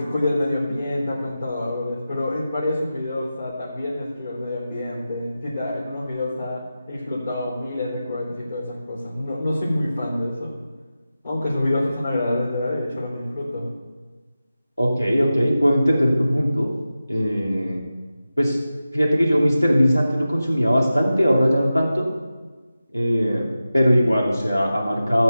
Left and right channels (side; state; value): both; inverted; correlation -0.93